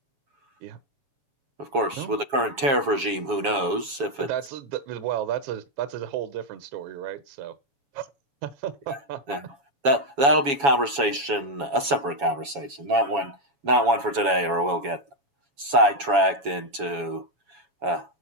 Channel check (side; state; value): left; late; 7.2 ms